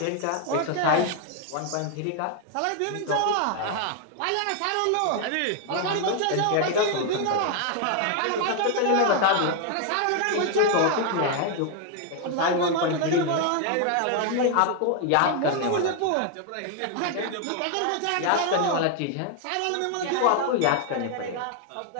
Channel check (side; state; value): both; different; correlation 0.00